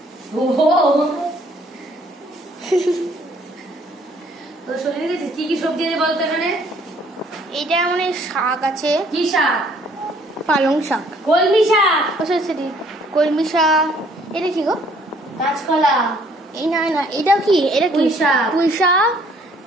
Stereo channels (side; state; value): both; normal; correlation 0.61